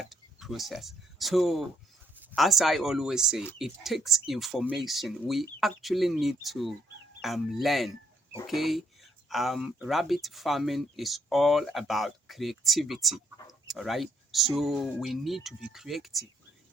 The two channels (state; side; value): normal; both; correlation 0.68